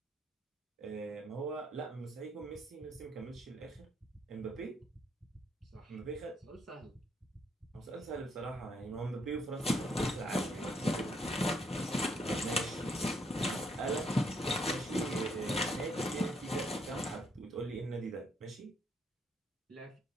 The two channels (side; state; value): both; normal; correlation 0.71